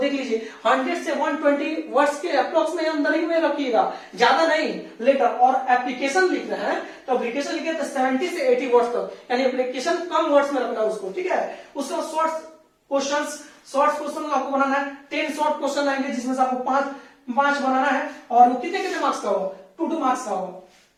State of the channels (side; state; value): both; identical; correlation 1.00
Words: लीजिए 100 से 120 वर्ड्स के अप्रोक्स में अंदर ही में रखिएगा, ज्यादा नहीं। लेटर और एप्लीकेशन लिख रहे हैं तो एप्लीकेशन लिखे तो 70 से 80 वर्ड्स तक, यानी एप्लीकेशन कम वर्ड्स में रखना उसको। ठीक है, उसका शॉर्ट क्वेश्चन आपको बनाना है। 10 शॉर्ट क्वेश्चन आएंगे, जिसमें से आपको 5 बनाना है, और वो कितने मार्क्स का होगा? 2 मार्क्स का होगा,